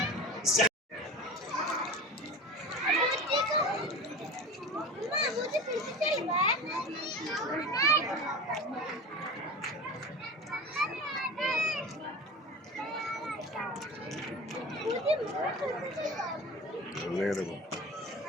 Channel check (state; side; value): normal; both; correlation 0.32